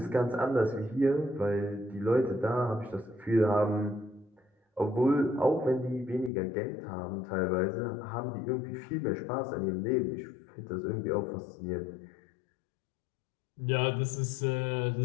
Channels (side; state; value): right; drops out; at 6.3 s